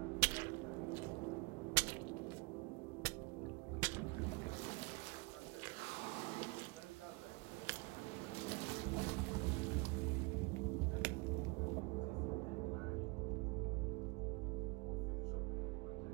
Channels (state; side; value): quieter; left; 27.3 dB